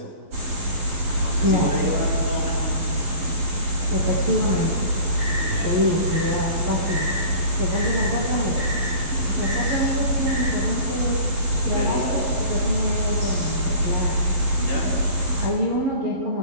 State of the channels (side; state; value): left; late; 11 ms